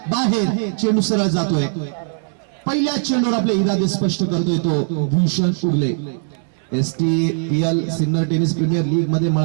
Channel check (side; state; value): left; silent; digital silence